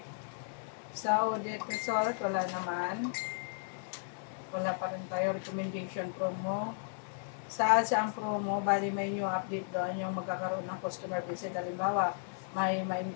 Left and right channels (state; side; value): silent; right; 55 dB below the other